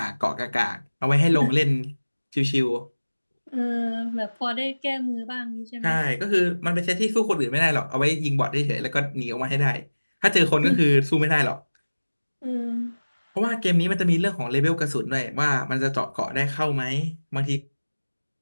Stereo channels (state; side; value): inverted; both; correlation -1.00